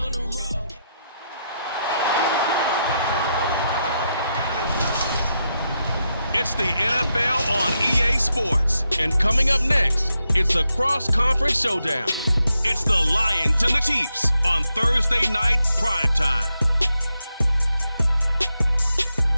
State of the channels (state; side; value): inverted; both; correlation -0.84